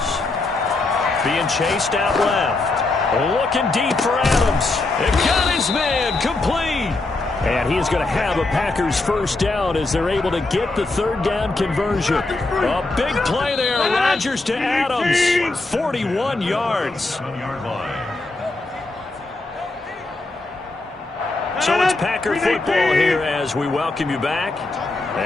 Being chased out left. Looking deep for Adams. It got his man complete. And he's going to have a Packers first down as they're able to get the third down conversion. A big play there. Rodgers to Adams. 41 yards. So it's Packer football here as we welcome you back.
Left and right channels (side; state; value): right; quieter; 3.2 dB